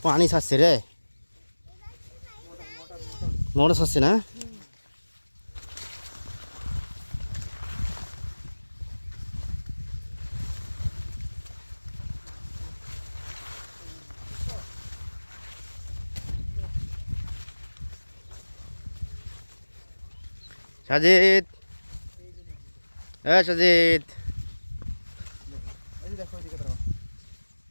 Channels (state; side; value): inverted; both; correlation -1.00